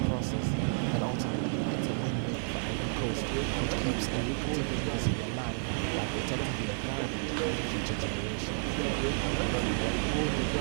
process, but ultimately it's a win-win for Ivory Coast, which keeps a lucrative industry alive while protecting the environment for future generations.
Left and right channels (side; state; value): left; silent; 57 dB below the other